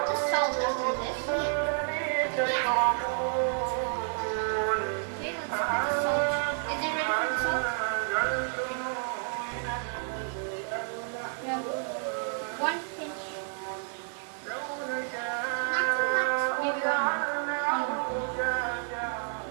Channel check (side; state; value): left; silent; 56 dB below the other